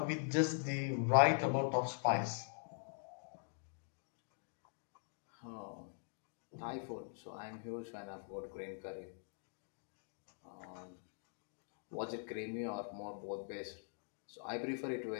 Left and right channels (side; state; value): right; silent; digital silence